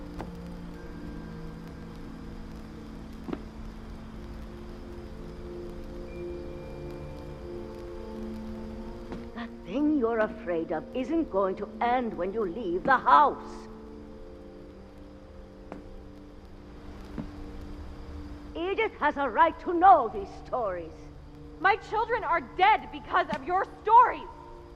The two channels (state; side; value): identical; both; correlation 1.00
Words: That thing you're afraid of isn't going to end when you leave the house. Edith has a right to know these stories. My children are dead because of your stories!